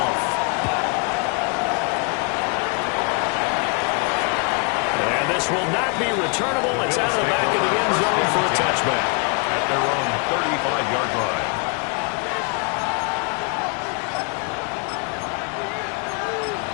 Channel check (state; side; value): quieter; right; 35.0 dB